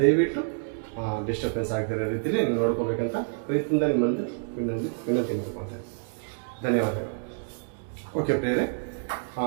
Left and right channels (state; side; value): silent; left; digital silence